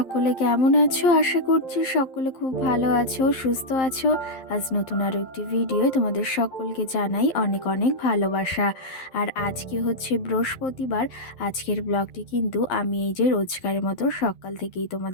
কেমন আছো? আশা করছি সকলে খুব ভালো আছো, সুস্থ আছো। আজ নতুন আরও একটি ভিডিও তোমাদের সকলকে জানাই অনেক অনেক ভালোবাসা। আর আজকে হচ্ছে বৃহস্পতিবার। আজকের ব্লগটি কিন্তু আমি এই যে রোজকারের মতো সকাল থেকেই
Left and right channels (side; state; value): right; late; 11 ms